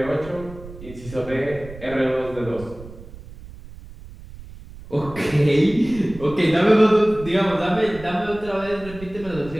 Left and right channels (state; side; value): noise; right; rumble, 16 dB below the sound